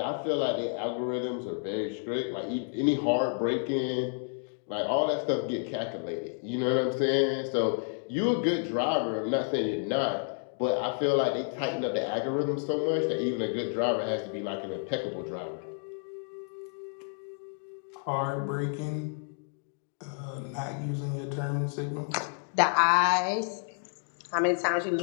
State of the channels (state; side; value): silent; right; 58 dB below the other